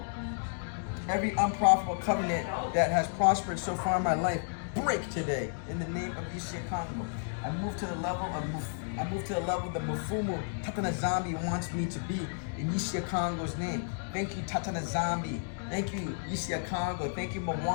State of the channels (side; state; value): right; silent; digital silence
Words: Every unprofitable covenant that has prospered so far in my life, break today in the name of Yissa Yah Kongo. I move to the level that Mufumu Tatana Zambi wants me to be in Yissa Yah Kongo's name. Thank you, Tatana Zambi. Thank you, Yissa Yah Kongo. Thank you,